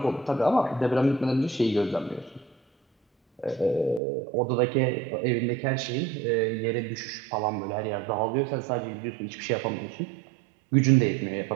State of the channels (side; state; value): left; drops out; at 4.0 s